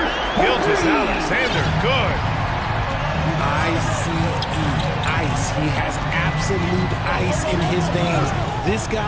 Gilgeous-Alexander, good. ICE, ice. He has absolute ice in his veins. This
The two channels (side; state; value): both; identical; correlation 1.00